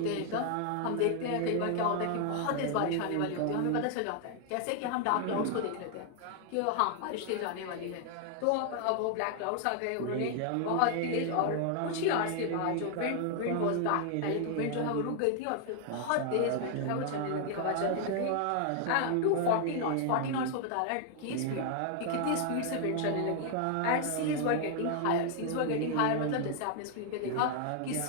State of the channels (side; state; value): both; different; correlation 0.00